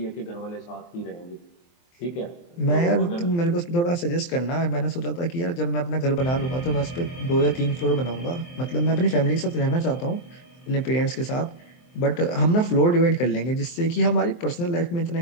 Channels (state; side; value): late; right; 23 ms